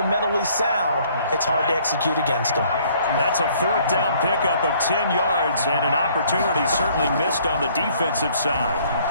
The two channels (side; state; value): both; inverted; correlation -0.61